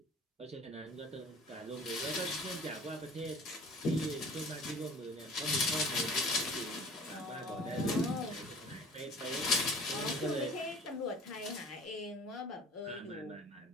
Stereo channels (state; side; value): normal; both; correlation 0.46